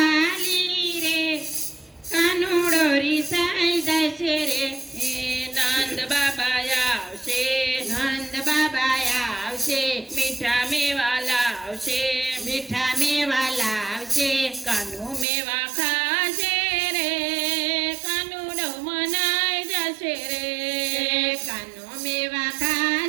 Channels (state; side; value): drops out; left; at 15.2 s